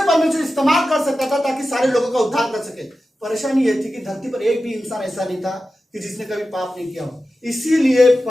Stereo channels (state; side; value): normal; both; correlation 0.93